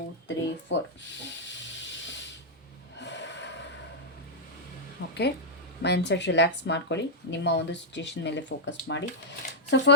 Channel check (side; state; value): both; normal; correlation -0.07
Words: 3 4. Okay, mindset relax ಮಾಡ್ಕೊಳ್ಳಿ, ನಿಮ್ಮ ಒಂದು ಸಿಚುವೇಶನ್ ಮೇಲೆ ಫೋಕಸ್ ಮಾಡಿ. So